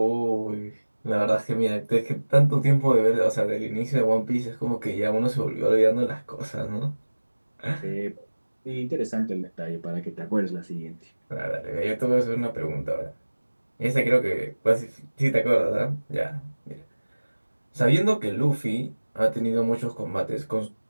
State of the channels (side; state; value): both; inverted; correlation -1.00